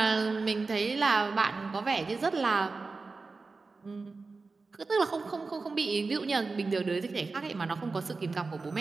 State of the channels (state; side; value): quieter; left; 4.0 dB